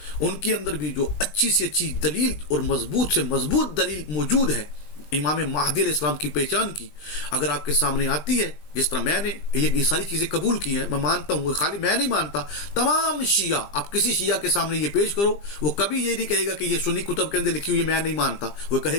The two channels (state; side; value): late; right; 20 ms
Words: ان کے اندر بھی جو اچھی سے اچھی دلیل اور مضبوط سے مضبوط دلیل موجود ہے امام مہدی علیہ السلام کی پہچان کی، اگر آپ کے سامنے آتی ہے، جس طرح میں نے یہ ساری چیزیں قبول کی ہیں، میں مانتا ہوں، خالی میں نہیں مانتا، تمام شیعہ، آپ کسی شیعہ کے سامنے یہ پیش کرو وہ کبھی یہ نہیں کہے گا کہ یہ سنی کتب کے اندر لکھی ہوئی میں نہیں مانتا، وہ